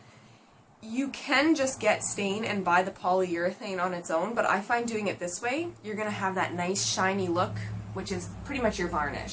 You can just get stain and buy the polyurethane on its own, but I find doing it this way, you're going to have that nice shiny look, which is pretty much your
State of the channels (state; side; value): identical; both; correlation 1.00